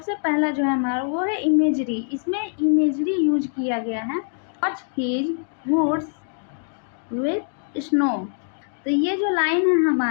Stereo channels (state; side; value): silent; right; digital silence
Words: पहला जो है हमारा वो है इमेजरी। इसमें इमेजरी यूज किया गया है। Watch his woods with snow. तो ये जो लाइन है